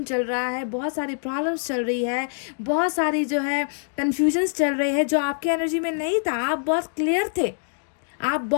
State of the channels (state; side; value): silent; right; 59 dB below the other